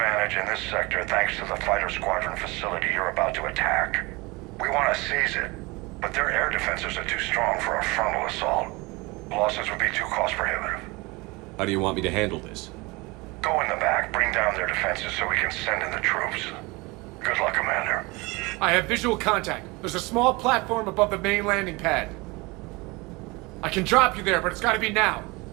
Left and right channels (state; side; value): quieter; left; 24.7 dB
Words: advantage in this sector thanks to the fighter squadron facility you're about to attack. We want to seize it, but their air defenses are too strong for a frontal assault. Losses would be too cost prohibitive. How do you want me to handle this? Go in the back, bring down their defenses so we can send in the troops. Good luck, Commander. I have visual contact. There's a small platform above the main landing pad. I can drop you there, but it's gotta be now.